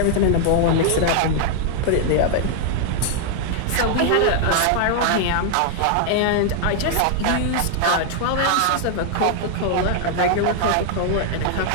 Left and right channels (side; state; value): both; different; correlation 0.00